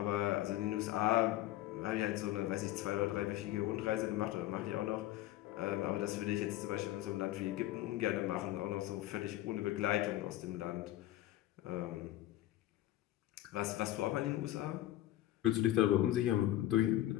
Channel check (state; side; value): quieter; right; 14.5 dB